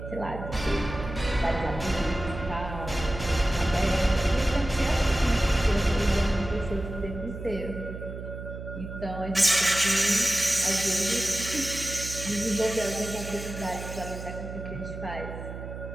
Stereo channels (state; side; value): noise; right; hum, 9 dB below the sound